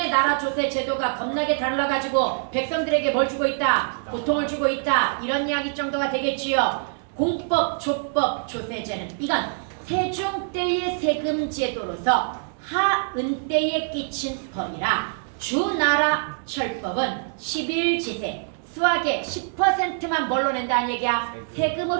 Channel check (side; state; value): left; silent; 62 dB below the other